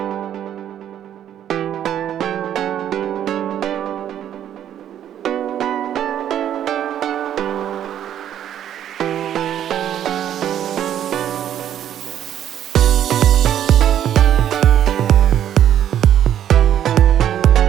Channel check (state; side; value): quieter; left; 10.5 dB